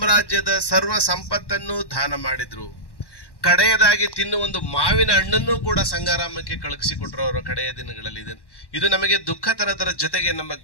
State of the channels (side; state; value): right; late; 1.1 ms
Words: ಸರ್ವ ಸಂಪತ್ತನ್ನು ದಾನ ಮಾಡಿದ್ರು. ಕಡೆಯದಾಗಿ ತಿನ್ನುವ ಒಂದು ಮಾವಿನ ಹಣ್ಣನ್ನು ಕೂಡ ಸಂಗಾರಾಮಕ್ಕೆ ಕಳುಹಿಸಿಕೊಟ್ರು ಅವರ ಕಡೆಯ ದಿನಗಳಲ್ಲಿ. ಇದು ನಮಗೆ ದುಃಖ ತರದರ ಜೊತೆಗೆ ನಮ್ಮ